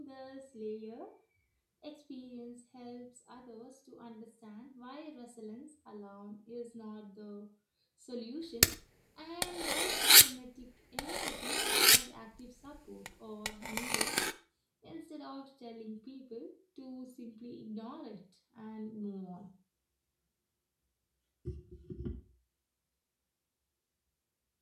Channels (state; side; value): identical; both; correlation 1.00